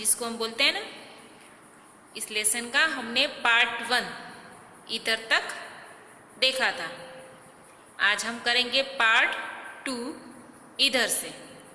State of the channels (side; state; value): both; identical; correlation 1.00